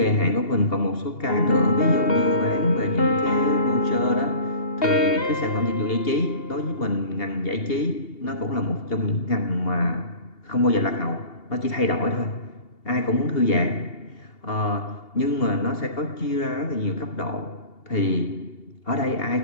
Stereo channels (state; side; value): late; right; 2.8 ms